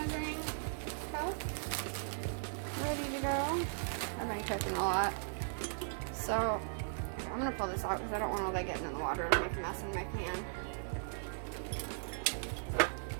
cup ready to go. I've been cooking a lot. So, I'm going to pull this out because I don't want all that getting in the water and make a mess in my pan.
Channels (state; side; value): silent; left; digital silence